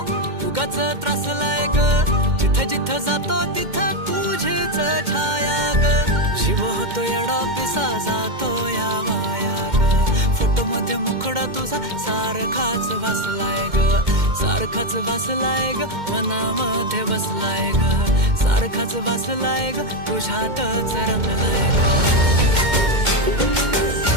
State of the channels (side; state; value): left; late; 2.1 ms